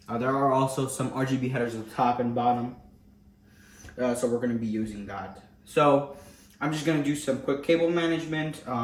There are also some RGB headers at the top and bottom. So we're going to be using that. So I'm just gonna do some quick cable management,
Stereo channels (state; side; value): identical; both; correlation 1.00